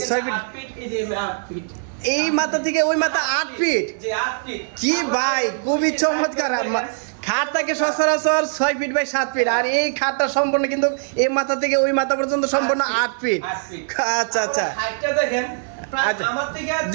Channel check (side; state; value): left; silent; digital silence